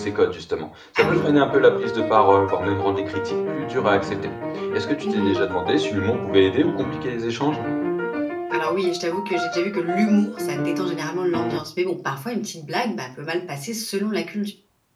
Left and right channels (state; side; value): identical; both; correlation 1.00